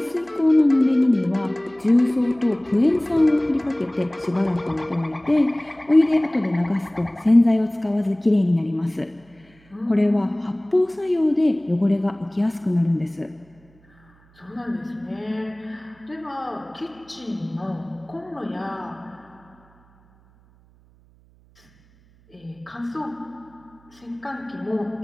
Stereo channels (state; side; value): noise; right; hum, 30 dB below the sound